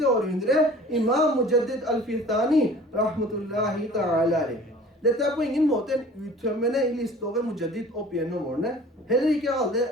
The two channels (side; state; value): both; normal; correlation 0.46